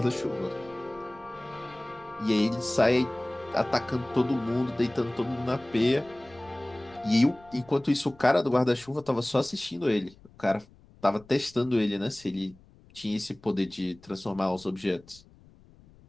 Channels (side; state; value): left; noise; rumble, 25 dB below the sound